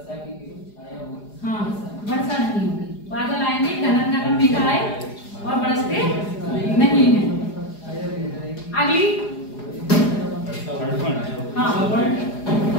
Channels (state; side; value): late; right; 4.9 ms